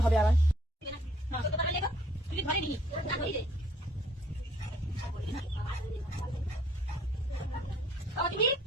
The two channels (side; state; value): both; normal; correlation 0.61